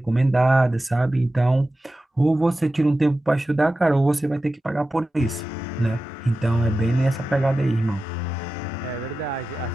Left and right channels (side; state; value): both; normal; correlation 0.94